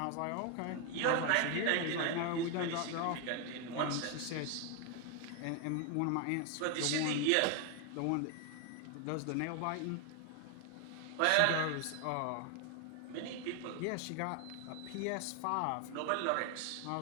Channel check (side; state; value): both; different; correlation 0.01